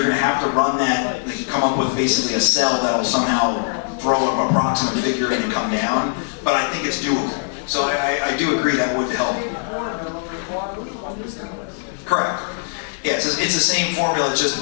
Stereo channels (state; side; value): silent; right; digital silence